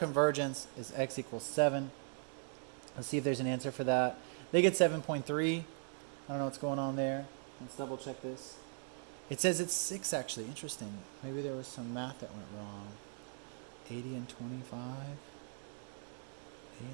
is x equals 7. Let's see if there's an answer for that. They get 7.3. I don't know what's going on there. Let's double check this. It says it's 6 actually. Interesting. Maybe there was some math that went wrong. 80 and 25. A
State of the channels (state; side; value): silent; left; 52 dB below the other